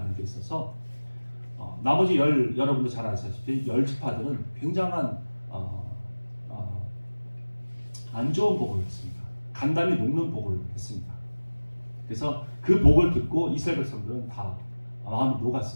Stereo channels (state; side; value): inverted; both; correlation -1.00